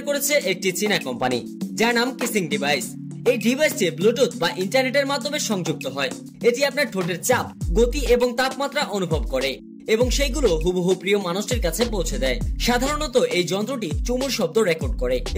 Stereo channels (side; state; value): both; identical; correlation 1.00